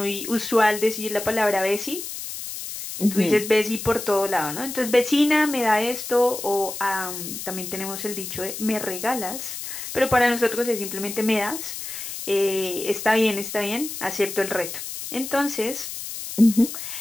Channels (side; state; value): left; noise; hiss, 8 dB below the sound